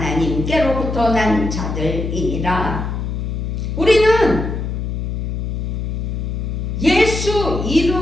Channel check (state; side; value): noise; left; hum, 3 dB below the sound